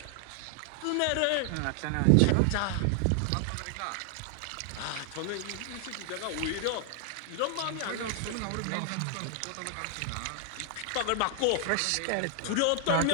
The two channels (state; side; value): different; both; correlation 0.00